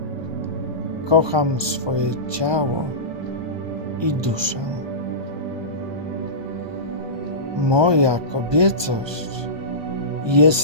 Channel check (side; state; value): left; late; 1.2 ms